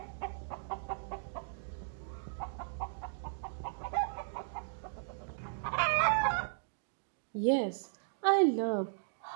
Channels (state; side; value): silent; left; digital silence